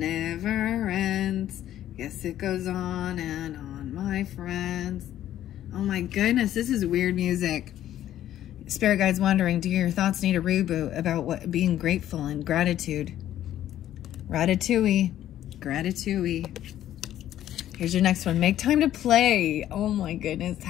ends. Yes, it goes on and on, my friends. Oh my goodness, this is weird music. Spirit guides wondering, do your thoughts need a reboot about what being grateful and gratitude? Ratatouille. Gratitouille. Here's your next one. Make time to play. Oh my goodness.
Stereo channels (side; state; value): right; quieter; 12.2 dB